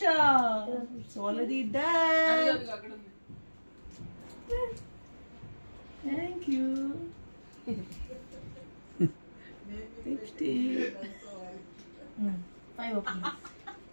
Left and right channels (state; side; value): inverted; both; correlation -1.00